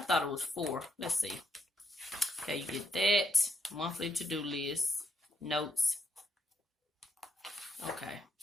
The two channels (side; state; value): both; normal; correlation 0.78